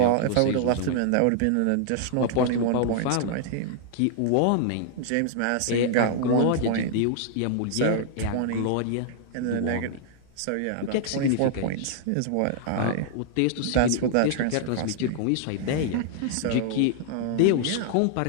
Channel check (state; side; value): different; both; correlation -0.01